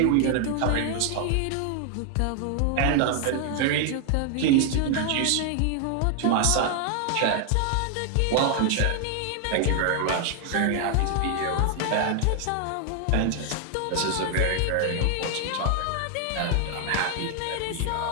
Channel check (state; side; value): different; both; correlation 0.00